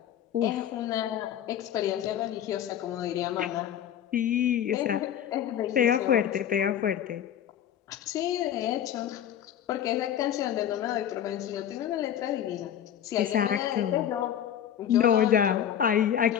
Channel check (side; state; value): right; quieter; 10.1 dB